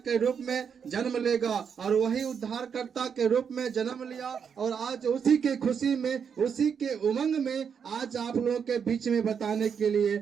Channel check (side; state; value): left; quieter; 7.0 dB